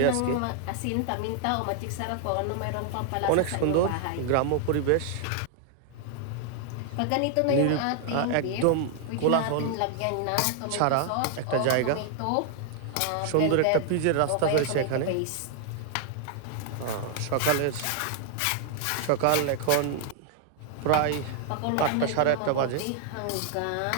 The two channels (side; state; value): both; different; correlation 0.00